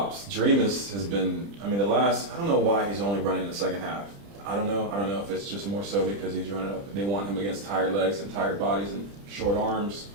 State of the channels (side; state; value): left; late; 30 ms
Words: Dreamus has been, I don't know why he's only running in the second half. I don't know if it's just more so because he's running up. They want him against tired legs and tired bodies and short arms.